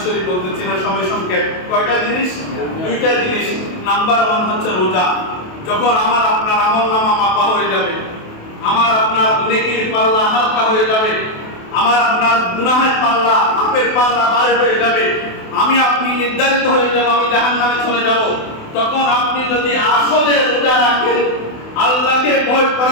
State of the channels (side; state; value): right; late; 28 ms